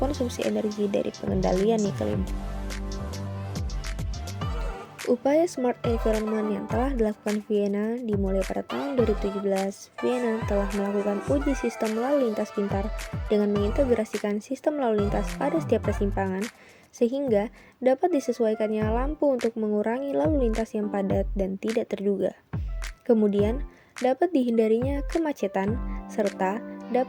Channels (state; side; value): identical; both; correlation 1.00